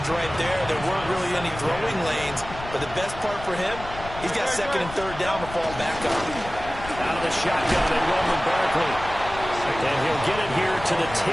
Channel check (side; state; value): left; noise; rumble, 13 dB below the sound